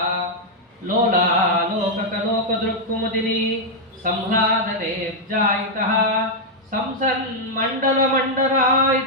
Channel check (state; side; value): normal; both; correlation -0.02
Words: ಲೋಲಾಲೋಕಕಲೋಕದೃಕ್ಕುಮುದಿನಿ ಸಂಹ್ಲಾದನೆ ಜಾಯಿತಃ ಸಂಸನ್ ಮಂಡಲ